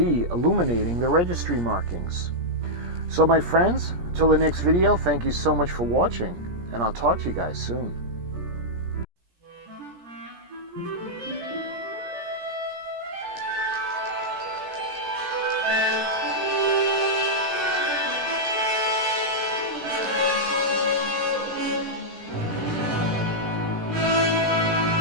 illuminating the registry markings. So my friends, until the next video, thank you so much for watching, and I'll talk to you guys soon.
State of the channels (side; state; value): left; late; 17 ms